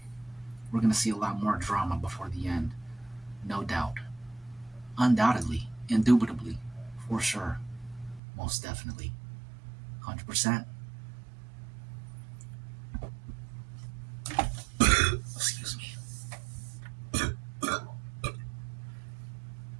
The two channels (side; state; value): left; drops out; at 8.2 s